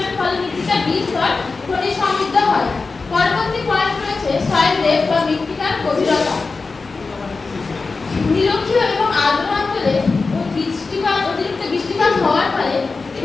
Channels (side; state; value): right; quieter; 4.1 dB